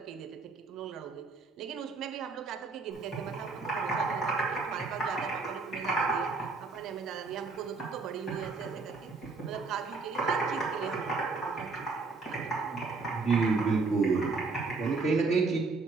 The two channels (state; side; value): quieter; left; 4.2 dB